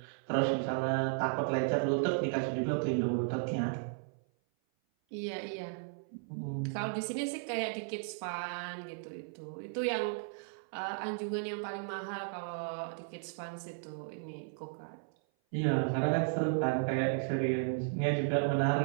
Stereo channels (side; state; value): left; silent; 55 dB below the other